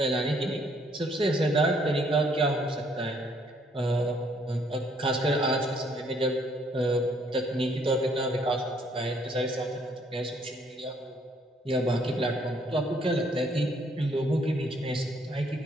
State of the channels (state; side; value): normal; both; correlation 0.66